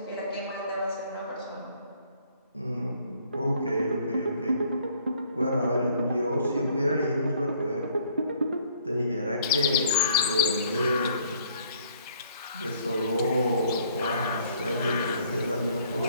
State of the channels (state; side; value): inverted; both; correlation -0.61